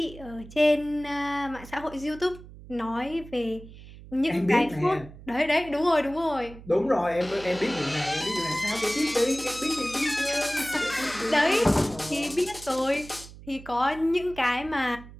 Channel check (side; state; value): right; noise; hum, 17 dB below the sound